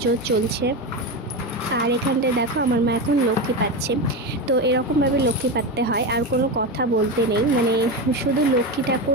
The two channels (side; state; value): both; normal; correlation 0.18